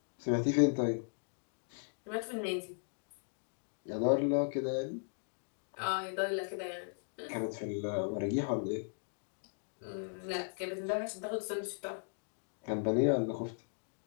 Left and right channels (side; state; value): right; silent; digital silence